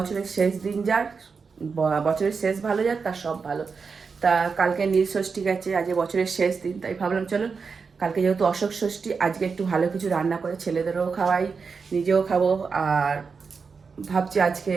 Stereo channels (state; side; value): quieter; left; 5.2 dB